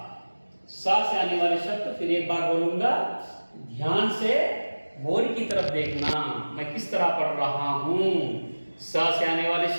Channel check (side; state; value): both; inverted; correlation -1.00